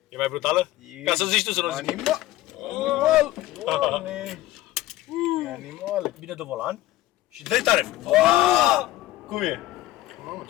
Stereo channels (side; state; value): right; quieter; 15.8 dB